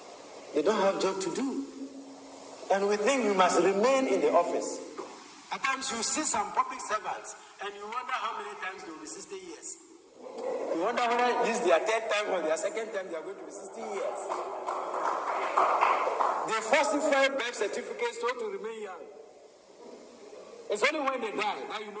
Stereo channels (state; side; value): identical; both; correlation 1.00